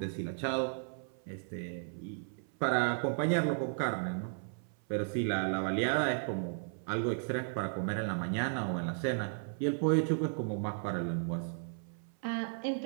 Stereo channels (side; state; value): left; silent; 55 dB below the other